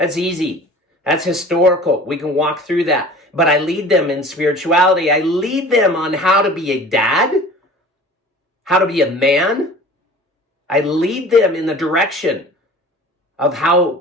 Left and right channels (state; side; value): normal; both; correlation 0.43